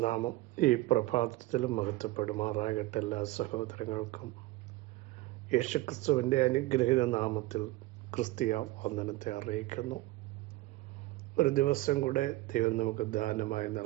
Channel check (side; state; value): left; quieter; 18.6 dB